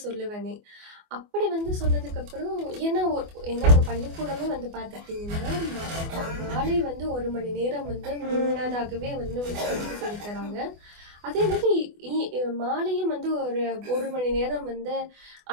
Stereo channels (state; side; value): late; left; 24 ms